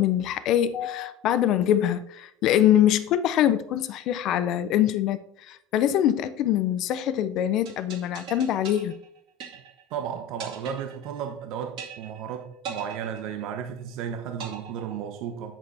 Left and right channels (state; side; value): quieter; right; 8.4 dB